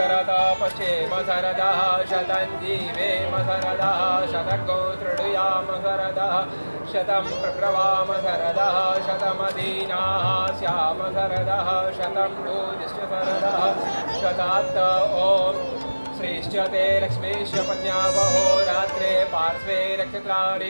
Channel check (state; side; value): inverted; both; correlation -1.00